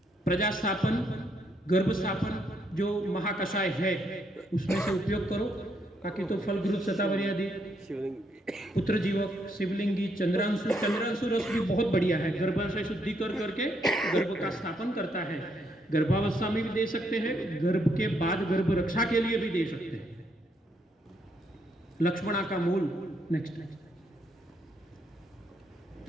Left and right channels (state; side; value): normal; both; correlation 0.74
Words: प्रजास्थापन, गर्भस्थापन जो महाकषाय है उसमें से उपयोग करो। बाकी तो फल घृत शतावरी आदि, पुत्र जीवक, शिवलिंगी, चंद्रांशु रस भी बहुत बढ़िया है। गर्भाशय शुद्धि करके गर्भ का स्थापन करता है। गर्भावस्था में भी दे सकते हैं, गर्भ के बाद गर्भ रक्षा के लिए भी दे सकते हैं। लक्ष्मणा का मूल। नेक्स्ट